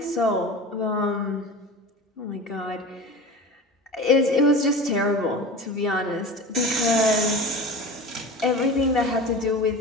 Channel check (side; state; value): both; normal; correlation 0.34